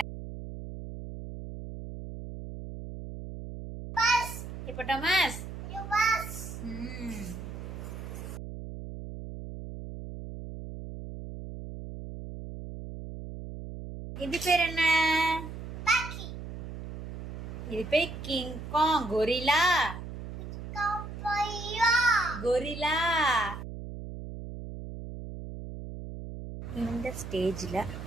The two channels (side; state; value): right; noise; hum, 9 dB below the sound